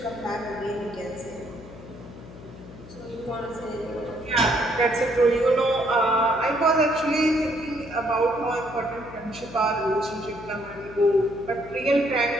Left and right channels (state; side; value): noise; left; hum, 16 dB below the sound